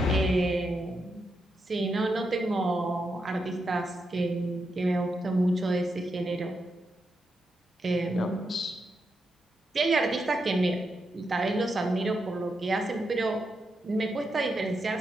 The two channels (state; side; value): normal; both; correlation 0.85